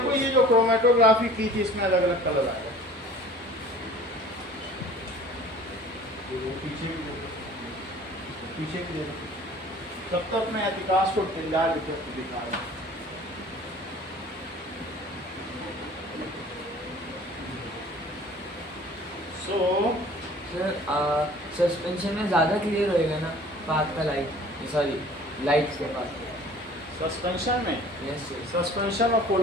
ये जो क्रोमेटोग्राफी की थी इसमें अलग अलग कलर आएगा। पीछे भी देखो, पीछे भी देखो। तब तक मैं अधिकांश को टिंडाल इफेक्ट दिखा रहा हूँ। सो सर सस्पेंशन में ज़्यादा क्लियर होएगा ना पाथ का लाइट, सॉरी लाइट के पास। सस्पेंशन में, यस सर, सस्पेंशन और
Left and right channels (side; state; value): both; normal; correlation 0.48